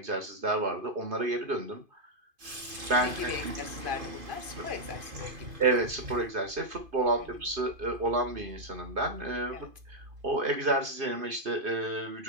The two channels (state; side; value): late; left; 2.5 ms